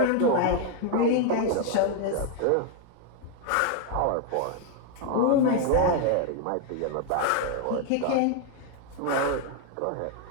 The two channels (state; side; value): different; both; correlation 0.00